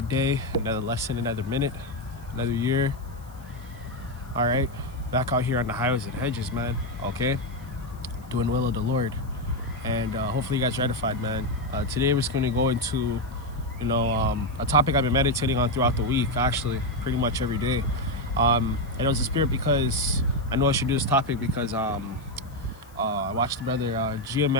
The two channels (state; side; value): noise; left; hiss, 28 dB below the sound